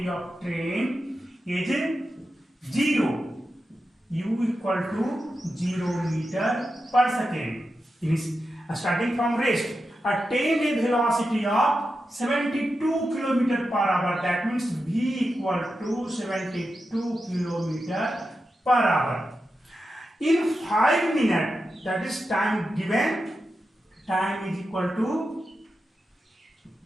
of train is 0, u equal to 0 meter per second. Starting from rest, attain a velocity of 72 kilometer per hour. That means v equal to 72 kilometer per hour. In 5 minutes, that is time given, time is equal to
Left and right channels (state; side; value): normal; both; correlation 0.90